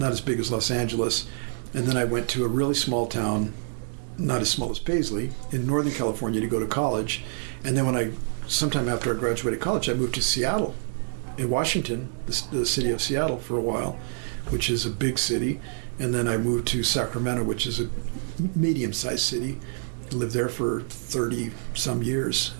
big as Los Angeles. And then I went to a really small town not as small as Paisley, in Northern California to go to college. And then sometime after I graduated college, I moved to Seattle, in Washington, the city of Seattle for a while, which is a big city. And then I moved to Sacramento, which is a medium-sized city. I lived there for 30-some years.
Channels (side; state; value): left; silent; digital silence